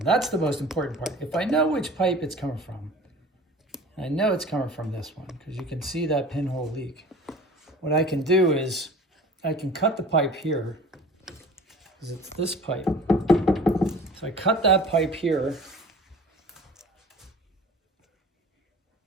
the most important part. If I know which pipe it's coming from, I know it's coming from this one, because you can see that pinhole leak. What I can do is I can cut the pipe here, because it's this pipe. So I cut that pipe here.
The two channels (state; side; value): normal; both; correlation 0.43